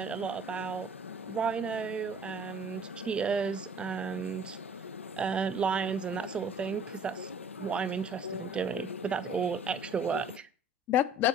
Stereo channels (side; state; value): both; normal; correlation 0.53